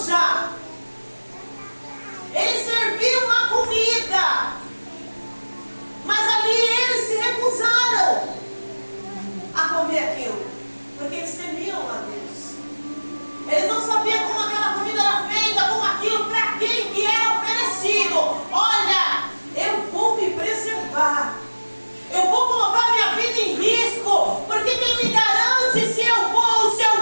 ele serviu uma comida, mas ali eles se recusaram a comer aquilo, porque eles temiam a Deus. Eles não sabiam como aquela comida era feita, como aquilo, para quem que era oferecido. Olha, eu vou me preservar, eu vou colocar minha vida em risco, porque quem me garante se eu vou ou se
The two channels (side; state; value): both; inverted; correlation -1.00